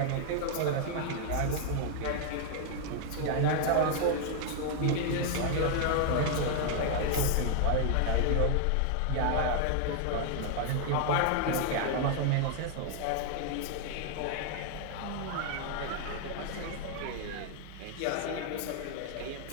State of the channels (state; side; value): different; both; correlation 0.00